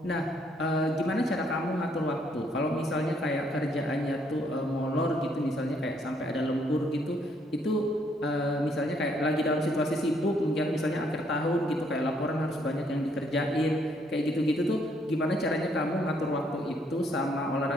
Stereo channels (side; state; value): both; normal; correlation 0.69